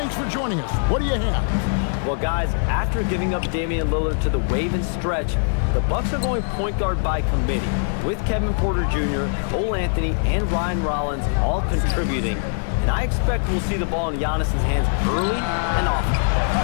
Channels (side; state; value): right; silent; digital silence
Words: for joining us. What do you have? Well, guys, after giving up Damian Lillard to the wave and stretch, the Bucks are going point guard by committee, with Kevin Porter Jr., Cole Anthony, and Ryan Rollins all contributing. And I expect we'll see the ball in Giannis's hands early and often.